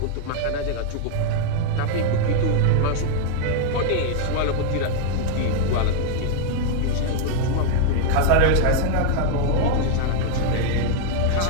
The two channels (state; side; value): different; both; correlation 0.00